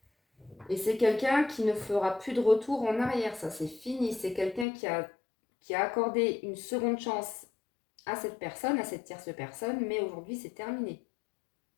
Et c'est quelqu'un qui ne fera plus de retour en arrière. Ça, c'est fini. C'est quelqu'un qui a accordé une seconde chance à cette personne, à cette tierce personne, mais aujourd'hui, c'est terminé.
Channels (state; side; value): drops out; right; at 4.7 s